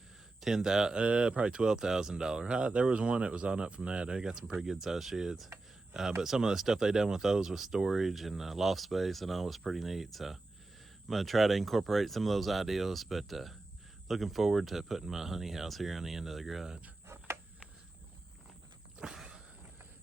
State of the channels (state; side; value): quieter; left; 3.1 dB